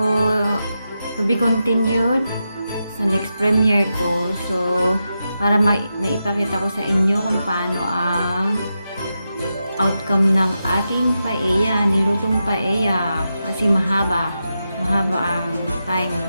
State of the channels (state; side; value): inverted; both; correlation -0.88